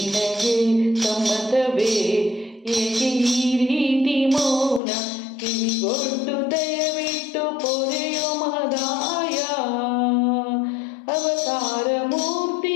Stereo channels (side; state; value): right; drops out; at 4.8 s